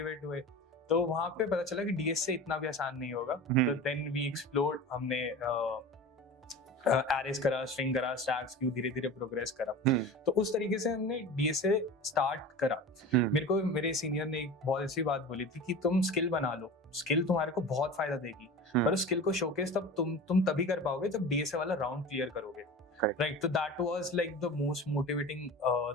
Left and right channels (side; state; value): both; normal; correlation 0.34